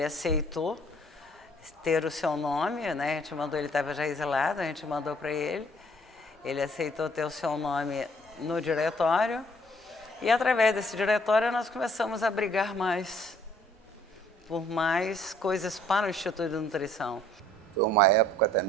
aceitou ter o seu nome, né? A gente mandou, ele estava já exilado, a gente mandou para ele. Ele aceitou ter o seu nome no diretório. E através desse diretório nós começamos a brigar mais por mais coisas para o Instituto de Nutrição. Foi uma época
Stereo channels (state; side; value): normal; both; correlation 0.60